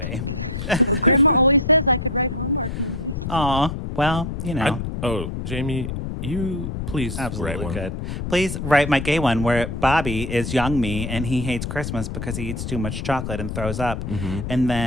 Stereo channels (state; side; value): noise; left; rumble, 5 dB below the sound